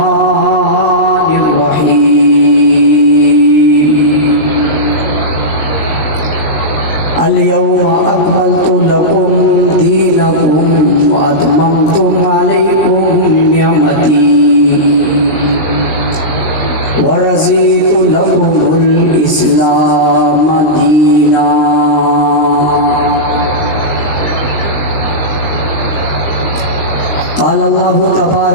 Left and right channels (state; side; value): late; right; 19 ms